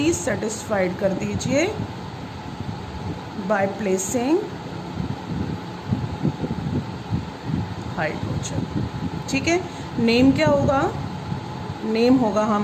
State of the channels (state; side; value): identical; both; correlation 1.00